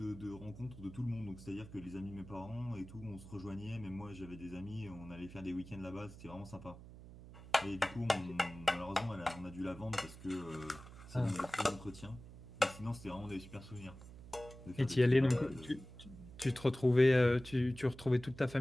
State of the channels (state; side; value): noise; right; hum, 16 dB below the sound